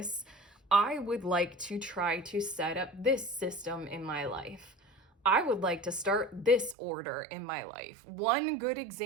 I would like to try to set up this system in my life. I would like to start this order in my life. One good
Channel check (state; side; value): drops out; left; at 6.8 s